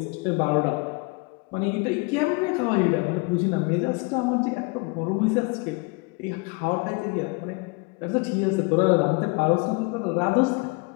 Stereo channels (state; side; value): quieter; right; 28.6 dB